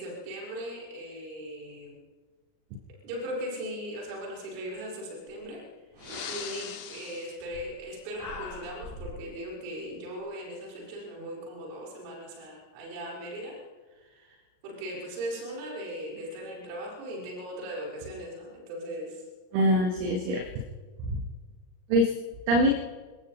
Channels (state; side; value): late; left; 38 ms